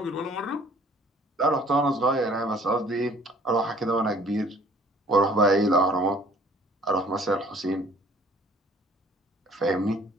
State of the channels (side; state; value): both; normal; correlation 0.54